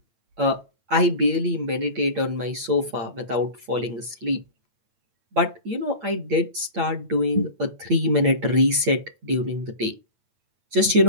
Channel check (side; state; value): left; late; 8.5 ms